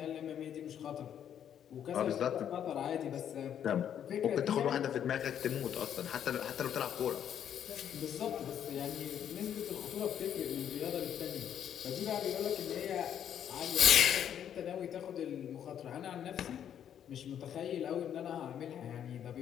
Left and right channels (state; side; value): quieter; right; 9.4 dB